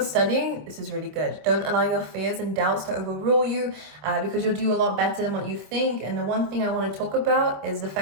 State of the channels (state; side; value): late; left; 26 ms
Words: studying, this is really good. Don't allow your fears and doubts to overrule you, because you'll do a lot better than what you think. And the one thing I want to talk about is the